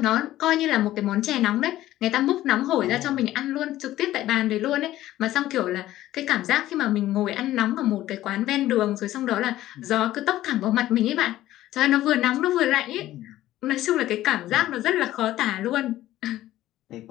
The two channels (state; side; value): quieter; right; 14.5 dB